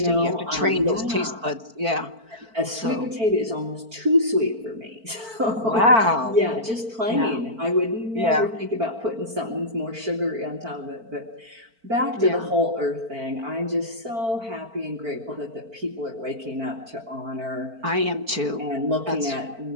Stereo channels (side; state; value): left; late; 4.5 ms